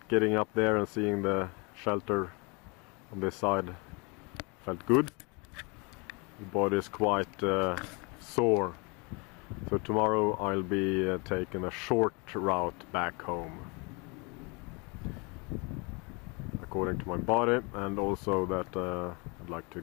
getting up there and seeing the shelter on this side felt good. The body is quite sore. So tomorrow I'll be taking a short route back home, according to my body, and also that I'd like to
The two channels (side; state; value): right; quieter; 30.6 dB